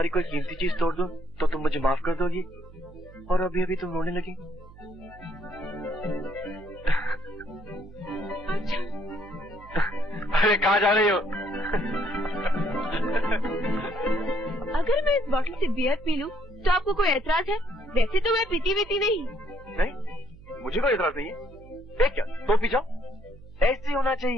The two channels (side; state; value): right; noise; hum, 20 dB below the sound